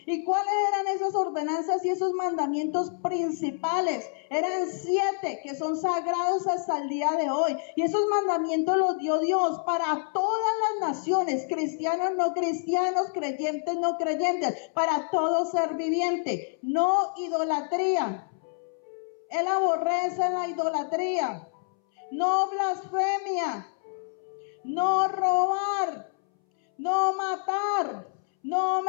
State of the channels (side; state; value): right; silent; 60 dB below the other